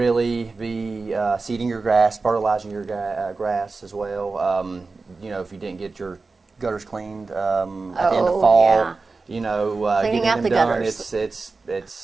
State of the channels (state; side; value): quieter; left; 4.0 dB